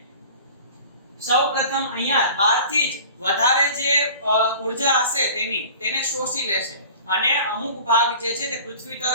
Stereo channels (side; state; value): both; inverted; correlation -0.43